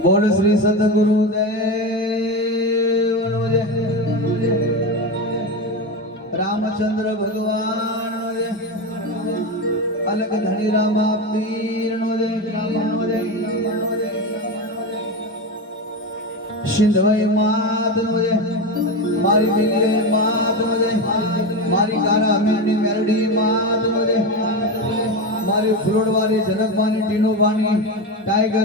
બોલ શ્રી સદગુરુદેવનો જય, રામચંદ્ર ભગવાન જય, અલગ ધણી રામા પીરનો જય, સિંધવાઈ માતનો જય, મારી મિલી માતનો જય, મારી કારા અમીરની મેરડી માતનો જય, મારી ફ્લોડવાળી જનકવાની ટીનોબાની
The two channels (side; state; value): both; normal; correlation 0.18